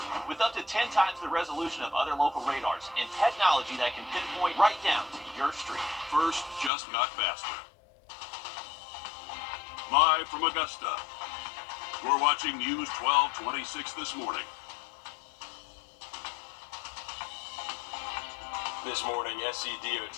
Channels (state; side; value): drops out; right; at 6.7 s